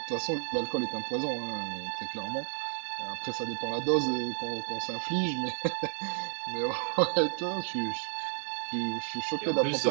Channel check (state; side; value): silent; left; 57 dB below the other